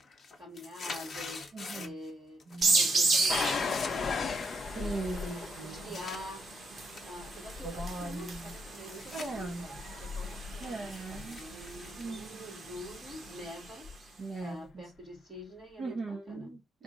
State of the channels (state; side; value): normal; both; correlation 0.77